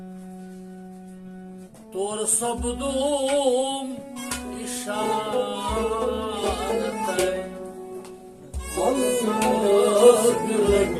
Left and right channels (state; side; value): identical; both; correlation 1.00